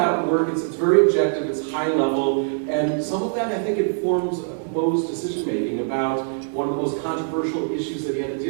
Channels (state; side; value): silent; left; digital silence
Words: work, it's very objective, it's high level, and some of that I think informs Mo's decision making about one of the most controversial issues that he had to